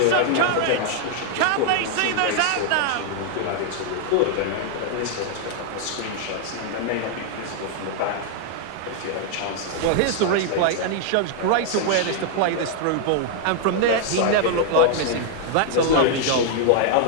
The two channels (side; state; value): both; different; correlation 0.00